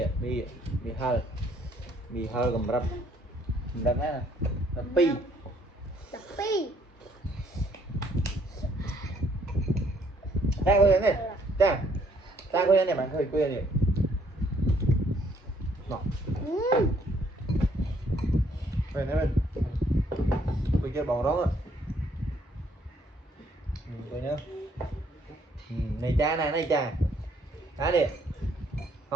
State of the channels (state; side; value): normal; both; correlation 0.66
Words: mì hơ cầm rập nè pi ta coi này ta coi này bạn coi này nọ về này bên tôi chơi bóng đó coi nhá này cha này cha cá đi